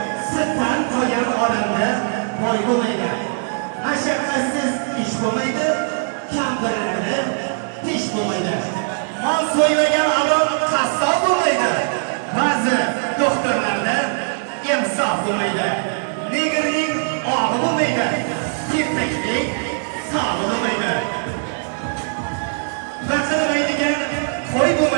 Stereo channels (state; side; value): silent; left; digital silence